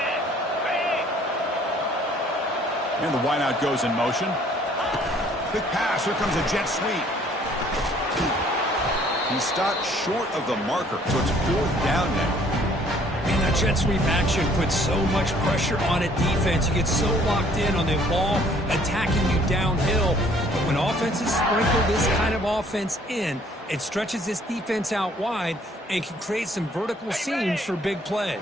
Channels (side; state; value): both; normal; correlation 0.59